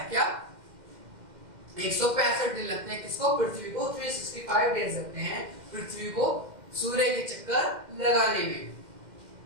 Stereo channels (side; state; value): left; late; 2.1 ms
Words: क्या 165 दिन लगते हैं किसको, पृथ्वी को। 365 डेज लगते हैं पृथ्वी को सूर्य के चक्कर लगाने में।